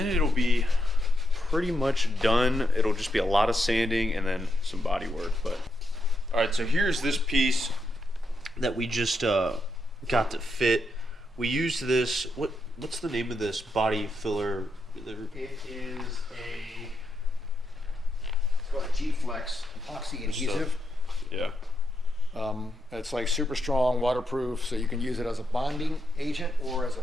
it'll be pretty much done. It'll just be a lot of sanding and then some body work. But all right, so here's this piece that we just got to fit. We used this, what's the name of this body filler? It is it's called a G-Flex epoxy adhesive. Yeah. It's like super strong, waterproof, so you can use it as a bonding agent or as a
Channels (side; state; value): both; normal; correlation 0.82